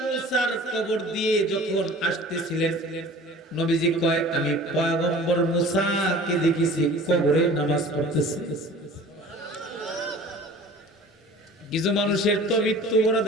মুসার কবর দিয়ে যখন আসতেছিলেন, নবীজি কয় আমি পয়গম্বর মুসাকে দেখেছি কবরে নামাজ পড়তেছে। কিছু মানুষের তো মৃত্যু বড়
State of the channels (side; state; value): both; normal; correlation 0.43